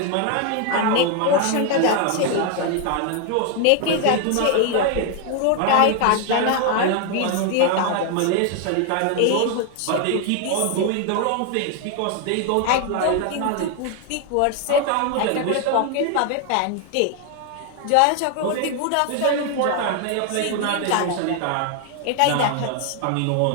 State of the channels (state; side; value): different; both; correlation 0.00